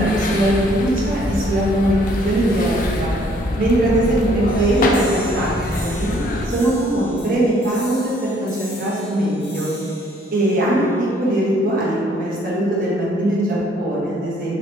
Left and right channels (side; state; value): both; normal; correlation 0.63